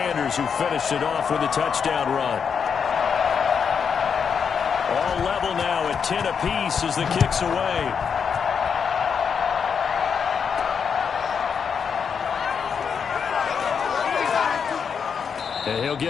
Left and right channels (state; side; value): quieter; right; 6.6 dB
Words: who finished it off with a touchdown run. All level now at 10 apiece as the kick's away. And he'll